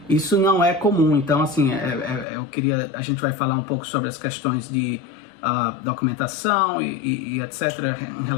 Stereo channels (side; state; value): right; drops out; at 2.2 s